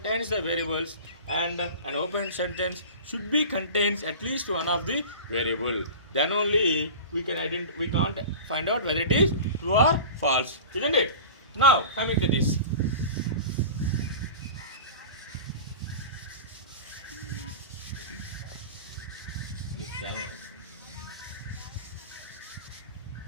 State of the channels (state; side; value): inverted; both; correlation -0.34